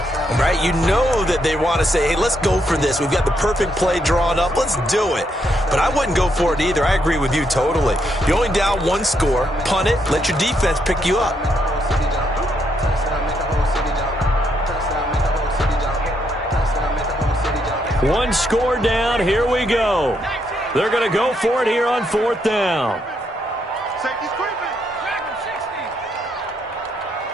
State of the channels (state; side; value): normal; both; correlation 0.76